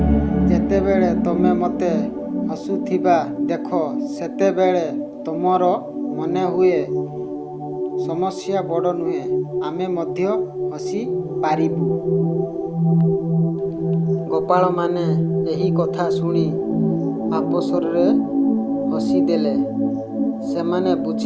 ଯେତେବେଳେ ତମେ ମୋତେ ହସୁଥିବା ଦେଖ, ସେତେବେଳେ ତମର ମନେ ହୁଏ ସମସ୍ୟା ବଡ଼ ନୁହେଁ, ଆମେ ମଧ୍ୟ ହସି ପାରିବୁ। ଗୋପାଳମାନେ ଏହି କଥା ଶୁଣି ଆପସରେ ହସିଦେଲେ। ସେମାନେ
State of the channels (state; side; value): identical; both; correlation 1.00